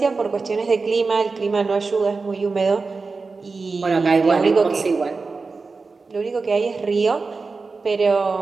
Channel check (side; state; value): left; quieter; 4.2 dB